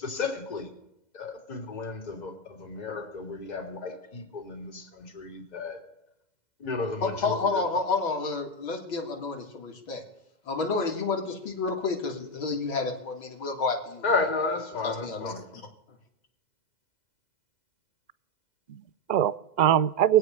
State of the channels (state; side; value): late; right; 2.0 ms